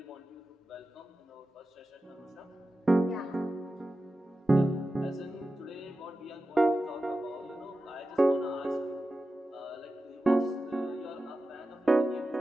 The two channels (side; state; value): both; normal; correlation 0.93